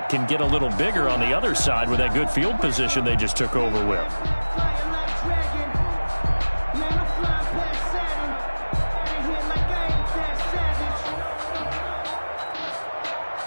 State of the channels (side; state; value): both; inverted; correlation -1.00